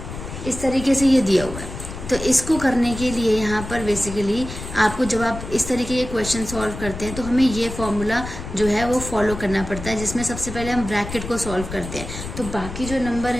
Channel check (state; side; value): noise; left; rumble, 9 dB below the sound